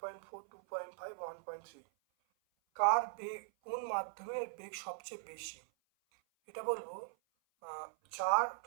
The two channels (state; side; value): silent; left; 51 dB below the other